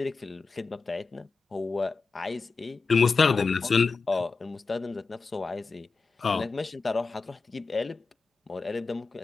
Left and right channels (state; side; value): quieter; right; 4.3 dB